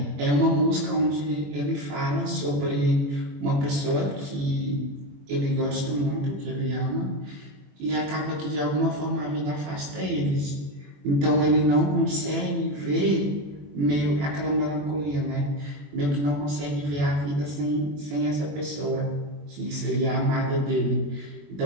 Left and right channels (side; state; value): left; late; 21 ms